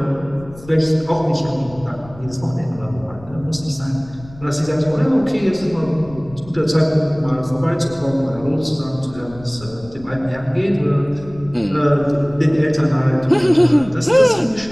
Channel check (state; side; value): noise; left; rumble, 20 dB below the sound